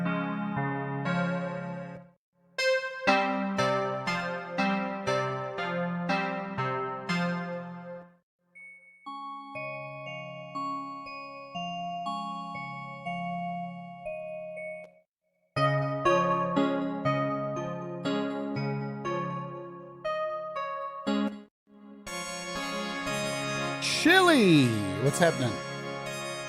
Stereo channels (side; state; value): both; identical; correlation 1.00